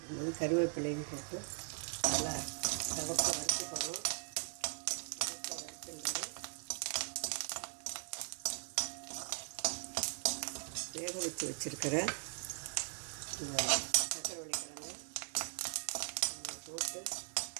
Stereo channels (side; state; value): left; silent; 51 dB below the other